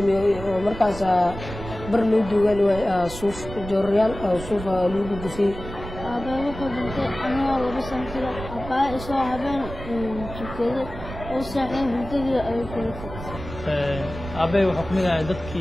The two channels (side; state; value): right; noise; rumble, 11 dB below the sound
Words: oo markaas bar loo duugal way suuf jooryaal suuf lagu gufay aba wuxuu dhintay anoo laba sano kala aba isoo habeen jikada oo saaxay hurdadii ay ku dhintay aba wuxuu kamid ahaa